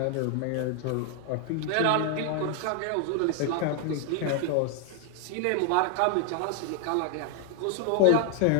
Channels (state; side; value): different; both; correlation 0.00